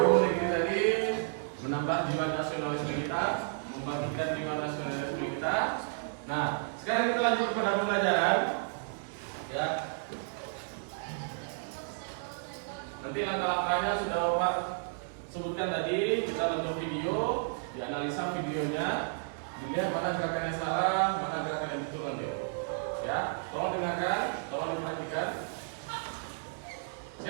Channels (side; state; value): left; silent; 56 dB below the other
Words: negeri tadi menambah jiwa nasionalisme kita, membangkitkan jiwa nasionalisme kita. Nah, sekarang kita lanjut pada pembelajaran. Ya. Nanti langkah-langkahnya sudah Bapak sebutkan tadi. Kita nonton video, dianalisa videonya, dilihat mana gerakan yang salah, mana gerakan yang betul nanti. Ya, tolong dengarkan, tolong diperhatikan.